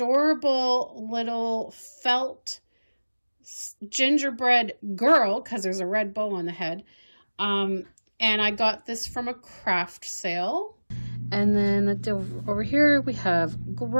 little felt gingerbread girl, because there's a red bow on the head. And I got this from a craft sale. And then over here we have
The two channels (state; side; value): inverted; both; correlation -1.00